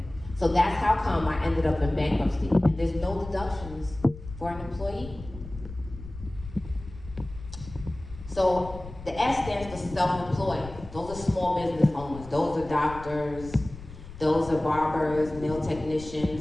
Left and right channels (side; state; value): left; noise; rumble, 14 dB below the sound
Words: So that's how come I ended up in bankruptcy. And there's no deductions for an employee. So the S stands for self-employed. Those are small business owners. Those are doctors. Those are barbers, nail